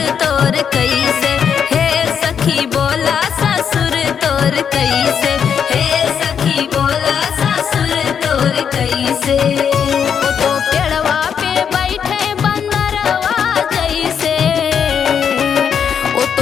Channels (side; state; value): right; quieter; 7.6 dB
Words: तोर कैसे, हे सखी बोला ससुर तोर कैसे, हे सखी बोला ससुर तोर कैसे। वो तो पेड़वा पे बैठे बंदरवा जैसे, वो